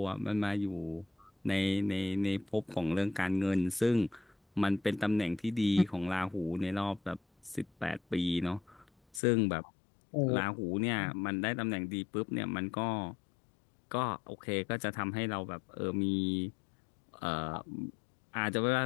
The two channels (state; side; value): drops out; right; at 9.2 s